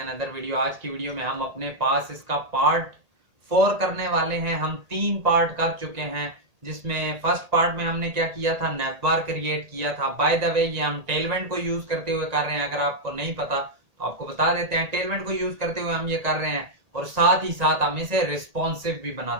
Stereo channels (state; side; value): late; left; 1.8 ms